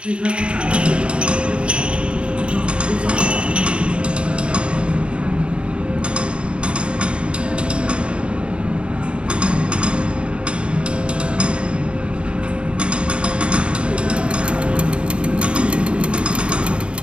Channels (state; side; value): late; left; 0.057 ms